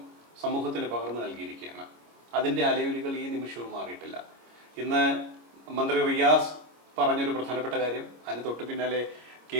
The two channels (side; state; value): left; late; 25 ms